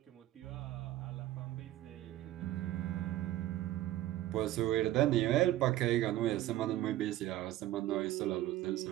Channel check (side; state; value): left; quieter; 14.6 dB